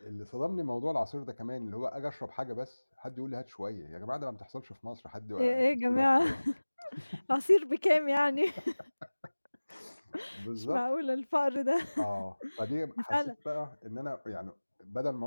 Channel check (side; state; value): both; inverted; correlation -1.00